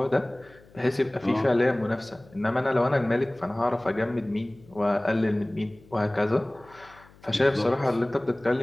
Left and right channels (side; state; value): left; noise; hum, 26 dB below the sound